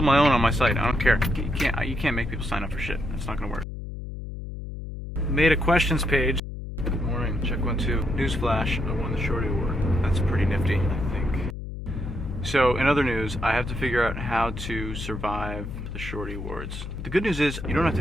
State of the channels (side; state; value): left; noise; hum, 8 dB below the sound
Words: my own on my site. I don't care. You can't make people sign up for shit. That's not gonna work. Made a questions page. Good morning. Check 1, 2. Newsflash. I won the Shorty Award. That's pretty nifty, I think. So, in other news, I have to figure out how to survive the Shorty Awards. The good news is, you don't have